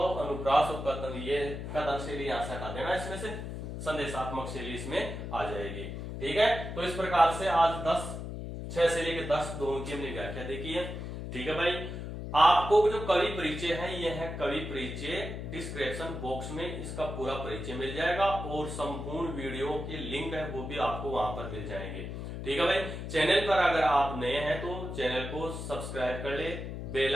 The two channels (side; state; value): left; noise; hum, 7 dB below the sound